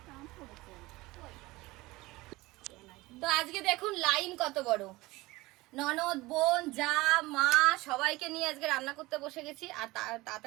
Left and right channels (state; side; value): quieter; left; 20.5 dB